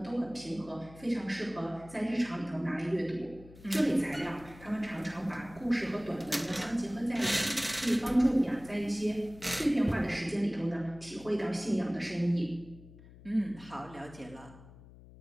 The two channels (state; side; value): noise; left; hum, 20 dB below the sound